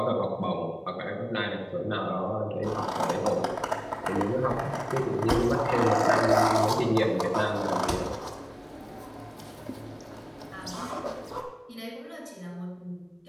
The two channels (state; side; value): identical; both; correlation 1.00